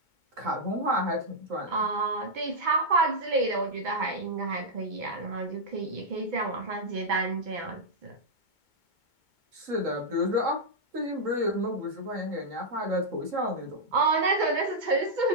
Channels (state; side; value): late; left; 2.2 ms